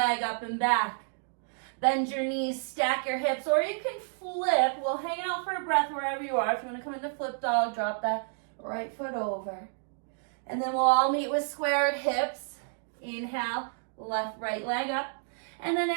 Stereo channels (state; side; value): silent; left; digital silence